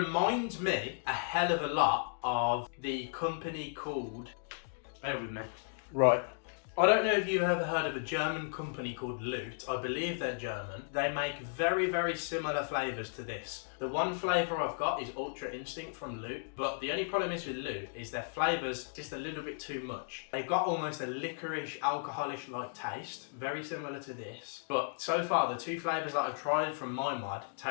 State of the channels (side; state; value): right; silent; digital silence